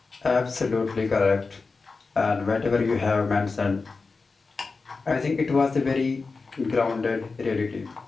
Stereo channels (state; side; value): quieter; right; 4.2 dB